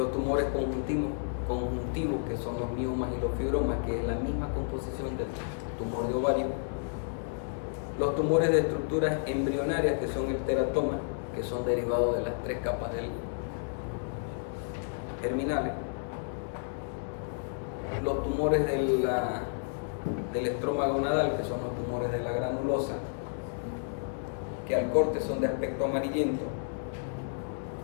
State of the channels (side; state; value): right; silent; digital silence